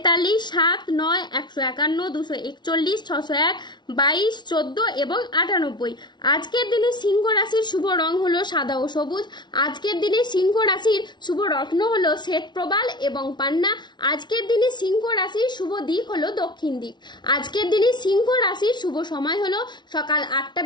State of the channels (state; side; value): late; right; 0.21 ms